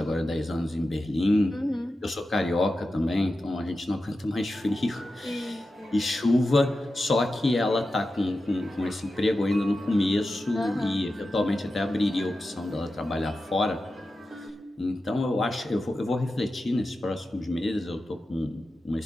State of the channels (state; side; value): normal; both; correlation 0.92